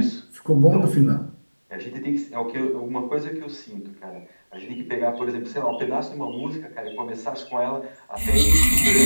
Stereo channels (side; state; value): both; inverted; correlation -1.00